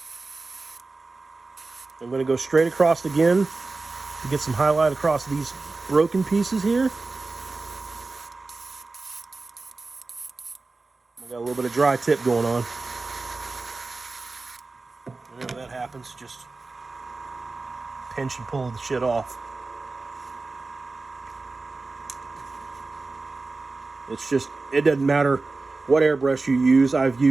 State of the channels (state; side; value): quieter; left; 3.6 dB